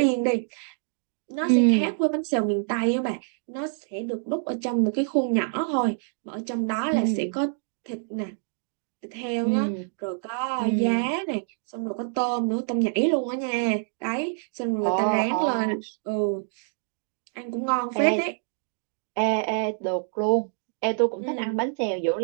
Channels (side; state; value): left; silent; digital silence